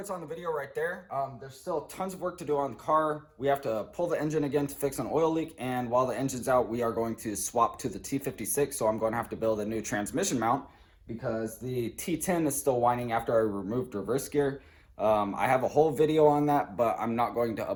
on the video right there. There's still tons of work to do on the car. We have to pull the engine again to fix an oil leak, and while the engine's out, we are going to swap to the T56, so I'm going to have to build a new transmission mount because the T10 is still whining after I removed reverse gear. I have a whole video on that, but I'm not going to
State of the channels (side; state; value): both; identical; correlation 1.00